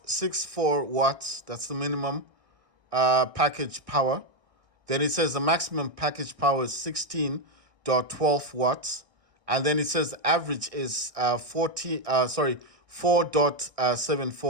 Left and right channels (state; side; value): late; left; 1.6 ms